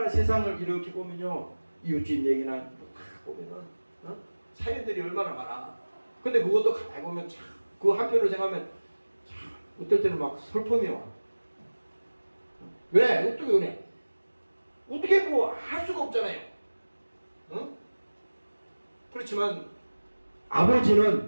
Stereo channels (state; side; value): inverted; both; correlation -1.00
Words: 세상을 이렇게 보면요, 이웃집 얘기나 다 보면은 사연들이 얼마나 많아. 근데 그것도 가만히 보면 참, 그 한편으로 생각하면 참, 어떨 때는 막 슬픔이 와. 왜? 어떻게 그래? 어떻게 뭐 할 수가 없잖아요. 응? 그렇지만